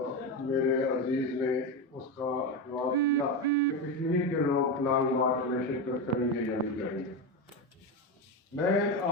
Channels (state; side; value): normal; both; correlation 0.15